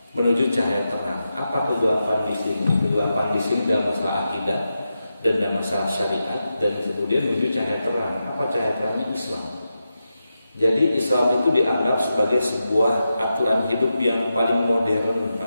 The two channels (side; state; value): both; inverted; correlation -0.89